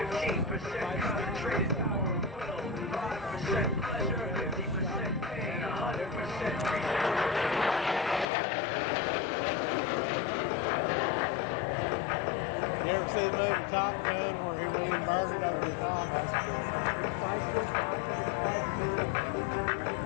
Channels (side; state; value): right; drops out; at 8.2 s